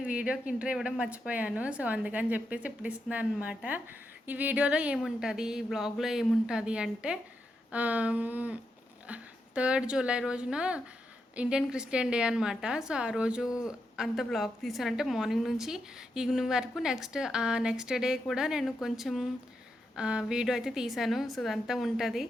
వీడియోకి ఇంట్రో ఇవ్వడం మర్చిపోయాను. సో అందుకని చెప్పేసి ఇప్పుడు ఇస్తున్నాను అనమాట. ఈ వీడియోలో ఏముంటుంది, ఈ బ్లాగ్లో ఏముంటుంది అంటే 3rd జూలై రోజున ఇండియన్ క్రిస్టియన్ డే అనమాట. సో ఆ రోజు అంత బ్లాగ్ తీసానంటే మార్నింగ్ నుంచి ఈవినింగ్ వరకు. నెక్స్ట్ డే కూడా నేను కొంచెం వీడియో అయితే తీసాను. సో అదంతా ఉంటుంది.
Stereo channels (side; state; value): both; normal; correlation 0.84